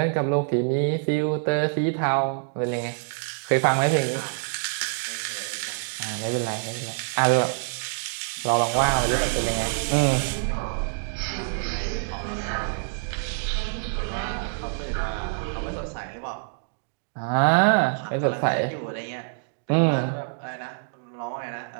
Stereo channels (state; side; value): silent; left; digital silence